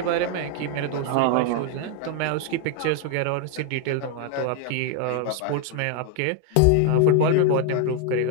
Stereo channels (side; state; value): both; different; correlation 0.00